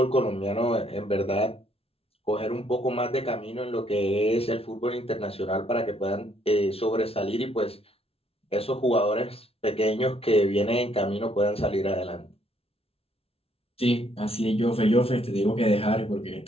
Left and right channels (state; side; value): late; right; 0.28 ms